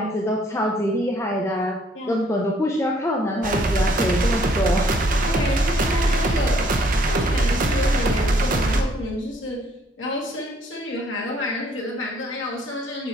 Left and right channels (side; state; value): both; normal; correlation 0.64